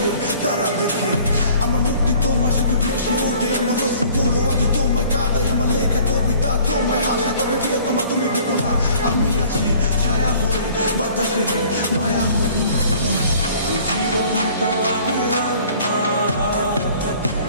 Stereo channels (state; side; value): inverted; both; correlation -0.53